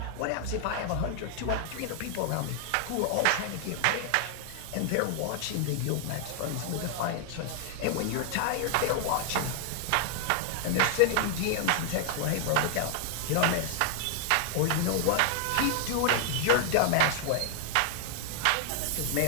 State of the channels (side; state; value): both; different; correlation 0.00